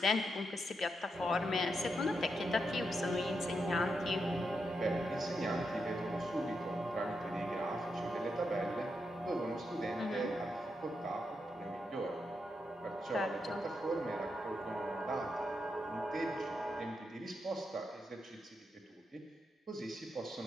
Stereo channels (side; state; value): both; normal; correlation 0.84